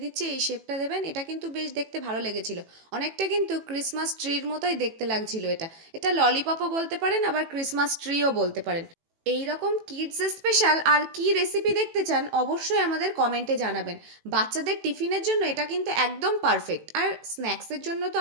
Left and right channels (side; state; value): left; late; 18 ms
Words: দিচ্ছি এই শেপটা দেবেন। এটা কিন্তু বেশ দেখতে ভালো লেগেছিল, অনেকটা কিন্তু ক্রিসমাস ট্রির মতোই দেখতে লাগছিল এটা। এটা ললিপপও বলতে পারেন, আবার ক্রিসমাস ট্রিও বলতে পারেন। এই রকম কিডস স্পেশাল আর কি রেসিপি দেখতে চান অবশ্যই আমাদের কমেন্টে জানাবেন। বাচ্চাদের টিফিনের জন্য এটা কিন্তু একদম পারফেক্ট, আর স্ন্যাক্সের জন্য তো